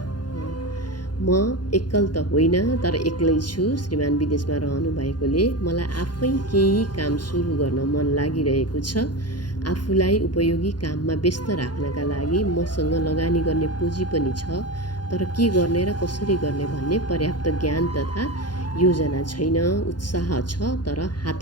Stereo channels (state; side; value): late; right; 0.70 ms